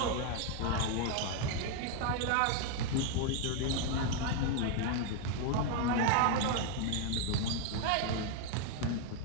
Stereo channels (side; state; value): both; different; correlation 0.01